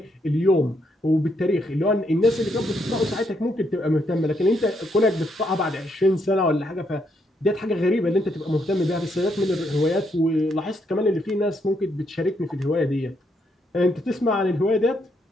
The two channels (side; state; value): both; normal; correlation 0.75